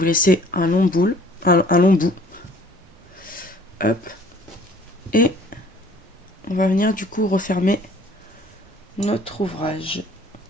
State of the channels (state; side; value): normal; both; correlation 0.54